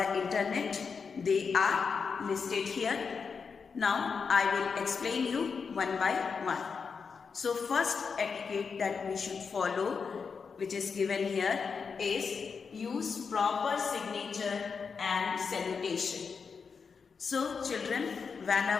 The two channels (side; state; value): right; quieter; 5.6 dB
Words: internet? They are listed here. Now, I will explain you one by one. So, first etiquette that we should follow, which is given here, is use proper signature and salutation. So, children,